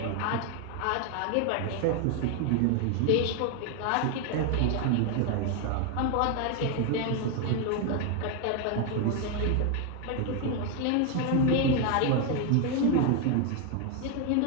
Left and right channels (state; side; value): different; both; correlation 0.01